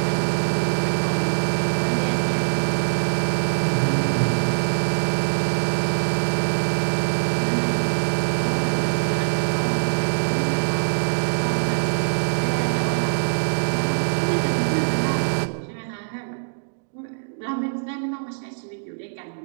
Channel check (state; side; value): silent; left; digital silence